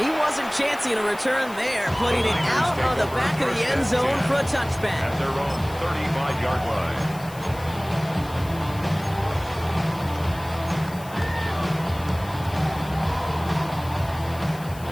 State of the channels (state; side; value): noise; left; hiss, 19 dB below the sound